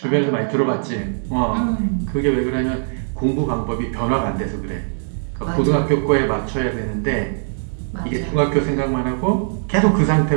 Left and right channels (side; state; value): left; silent; digital silence